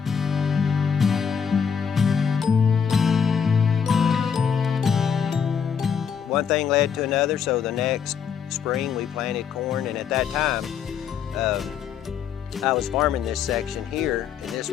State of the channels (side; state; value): right; quieter; 7.1 dB